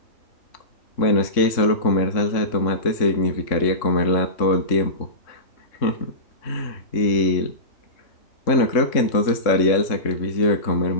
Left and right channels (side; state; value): right; late; 3.6 ms